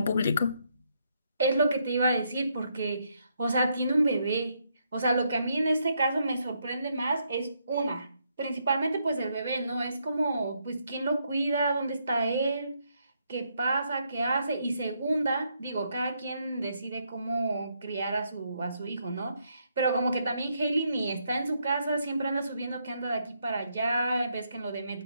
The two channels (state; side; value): inverted; both; correlation -0.76